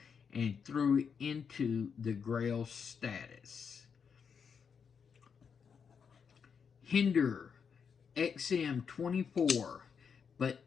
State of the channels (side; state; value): right; quieter; 6.5 dB